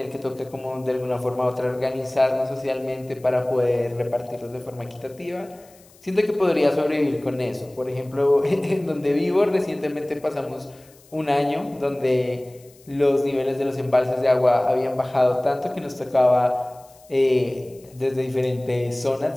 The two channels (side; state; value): left; noise; hiss, 27 dB below the sound